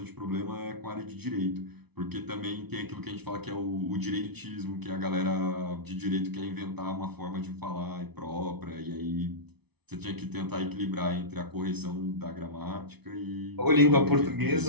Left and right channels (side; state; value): left; late; 0.99 ms